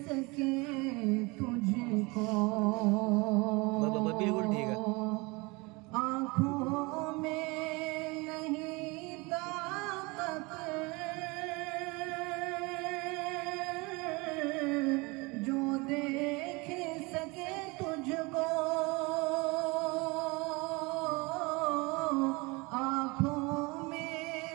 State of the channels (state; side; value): quieter; left; 26.2 dB